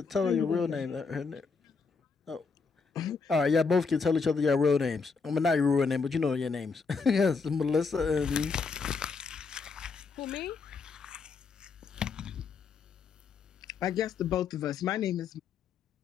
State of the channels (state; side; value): quieter; right; 4.9 dB